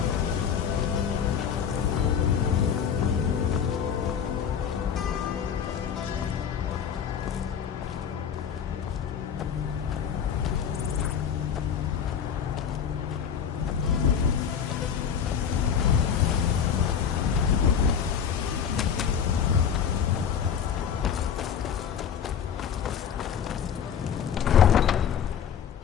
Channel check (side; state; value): right; quieter; 7.8 dB